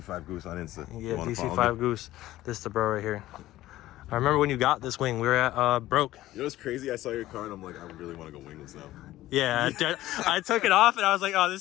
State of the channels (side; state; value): right; quieter; 15.4 dB